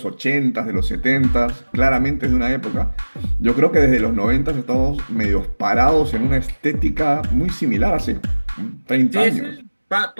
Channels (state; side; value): inverted; both; correlation -1.00